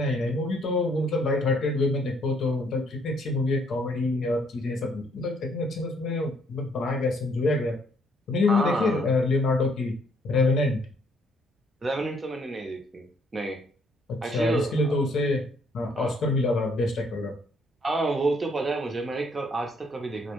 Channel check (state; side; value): normal; both; correlation 0.67